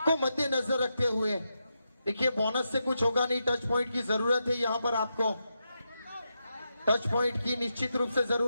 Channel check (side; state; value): both; inverted; correlation -0.86